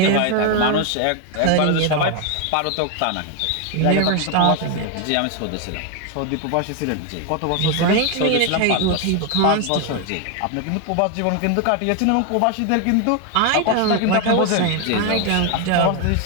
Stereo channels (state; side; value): different; both; correlation 0.01